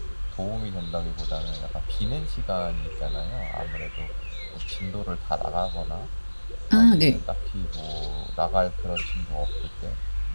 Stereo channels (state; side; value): inverted; both; correlation -1.00